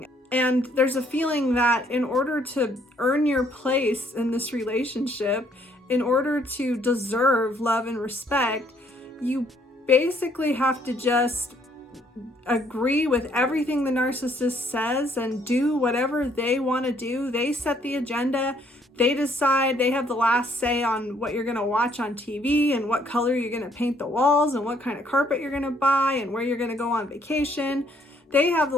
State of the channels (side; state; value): both; normal; correlation 0.66